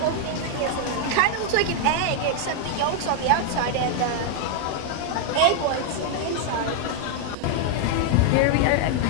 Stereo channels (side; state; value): both; different; correlation 0.00